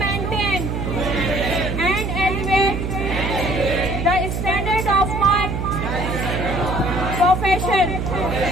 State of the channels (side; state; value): right; noise; hum, 2 dB below the sound